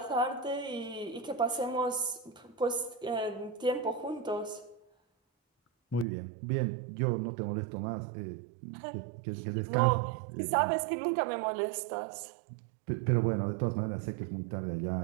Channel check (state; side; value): drops out; left; at 6.1 s